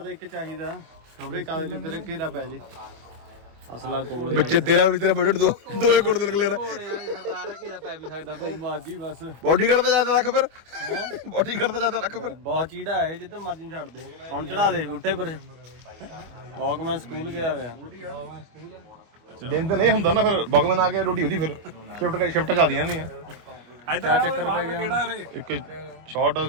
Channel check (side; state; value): left; late; 25 ms